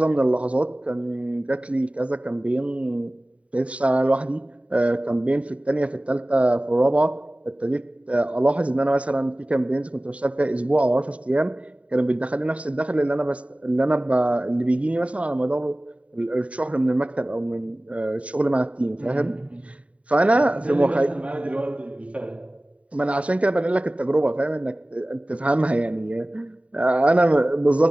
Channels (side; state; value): left; late; 0.065 ms